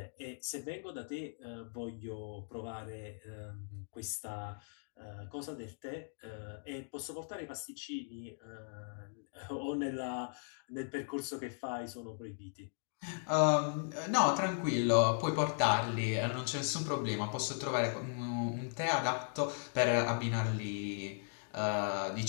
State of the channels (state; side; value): silent; right; digital silence